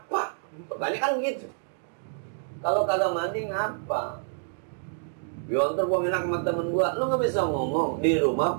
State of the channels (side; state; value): left; silent; digital silence